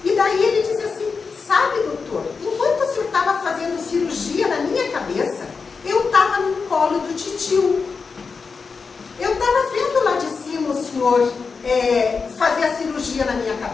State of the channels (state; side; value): quieter; right; 5.0 dB